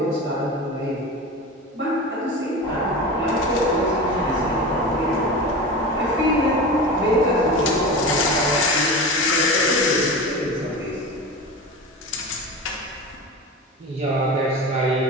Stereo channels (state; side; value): normal; both; correlation 0.28